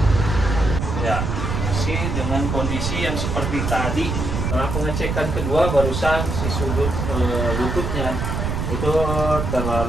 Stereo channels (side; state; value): right; noise; rumble, 2 dB below the sound